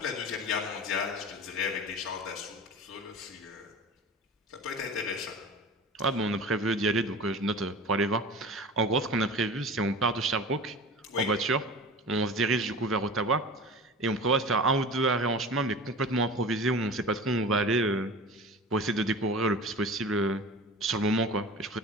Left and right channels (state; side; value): normal; both; correlation 0.36